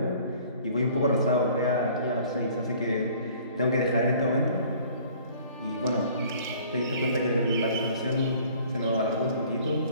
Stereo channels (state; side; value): inverted; both; correlation -0.53